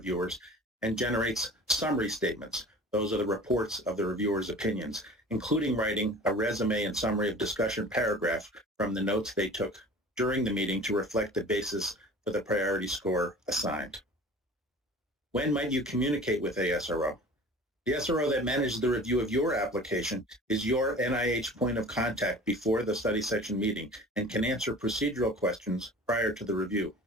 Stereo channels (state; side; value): normal; both; correlation 0.42